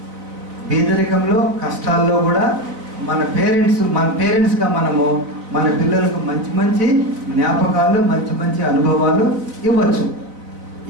పేదరికంలో కష్టాల్లో కూడా మన పేరెంట్స్గా మన పిల్లలకు మంచి మంచి జ్ఞాపకాలు, మంచి మంచి అనుభవాలు ఇవ్వచ్చు.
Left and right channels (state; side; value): late; left; 4.0 ms